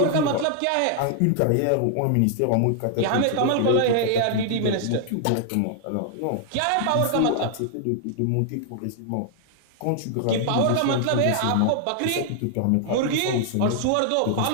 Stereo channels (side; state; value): both; different; correlation 0.00